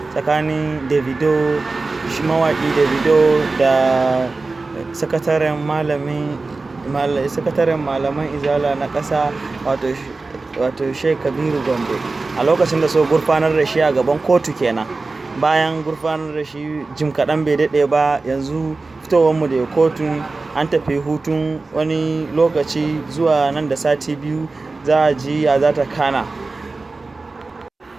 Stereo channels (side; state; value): left; quieter; 3.6 dB